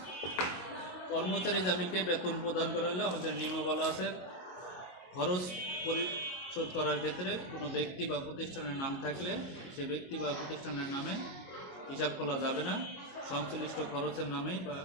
কর্মচারী জামিনকে বেতন প্রদান করা হলে আমাদের নিয়মে বলা আছে খরচ পরিশোধ করার ক্ষেত্রে কোনো ব্যক্তি বা প্রতিষ্ঠানের নাম থাকলে সে ব্যক্তি বা প্রতিষ্ঠানের নামে হিসাব খোলা যাবে না, সংশ্লিষ্ট খরচের নামেই বা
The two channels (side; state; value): right; late; 22 ms